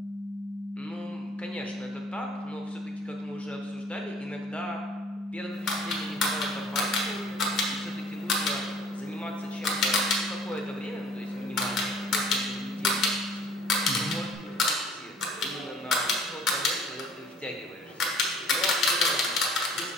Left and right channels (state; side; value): normal; both; correlation 0.53